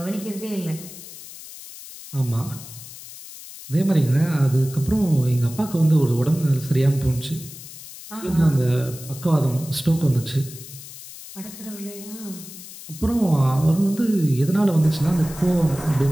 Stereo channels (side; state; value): left; noise; hiss, 15 dB below the sound